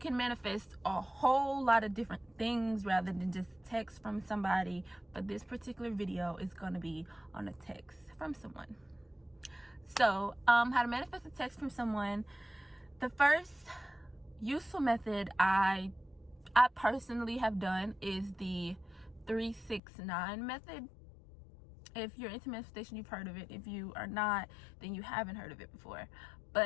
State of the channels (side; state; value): right; drops out; at 19.8 s